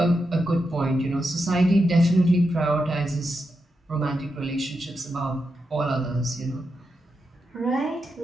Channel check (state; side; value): normal; both; correlation 0.86